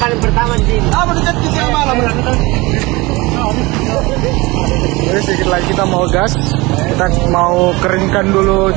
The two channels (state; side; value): quieter; left; 23.1 dB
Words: pertama di sini. Jadi sedikit lagi kita mau gas. Kita mau keringkan dulu